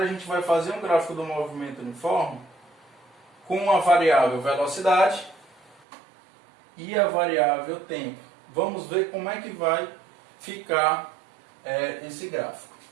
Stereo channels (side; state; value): left; drops out; at 5.8 s